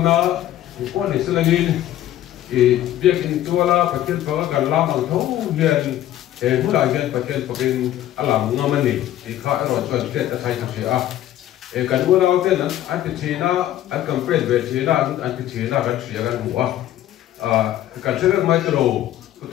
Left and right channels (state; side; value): quieter; right; 12.8 dB